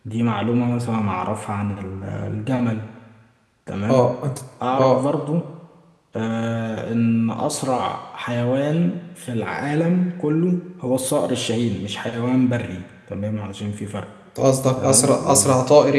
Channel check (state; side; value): identical; both; correlation 1.00